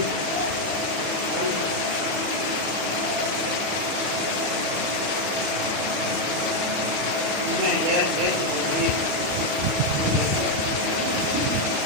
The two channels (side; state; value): left; late; 33 ms